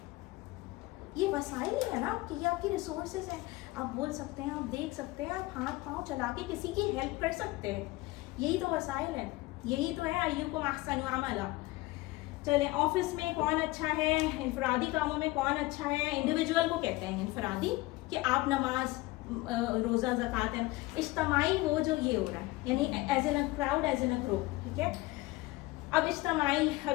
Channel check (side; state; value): right; quieter; 20.4 dB